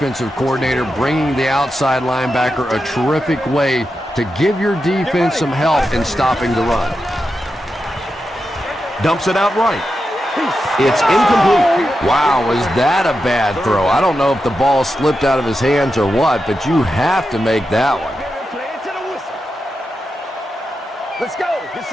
coordinator, bringing the outside linebacker a terrific way to give your defense some help in stopping the run. Dumps it out right. It's incomplete. Wow, was that a bad throw? I don't know if the ball slipped out of his hands or what, but you have to make that one. Let's go. It's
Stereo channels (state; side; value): normal; both; correlation 0.88